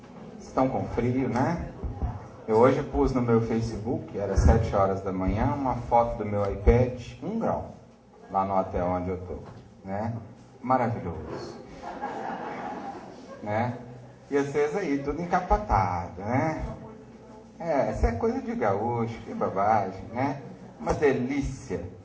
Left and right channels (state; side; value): identical; both; correlation 1.00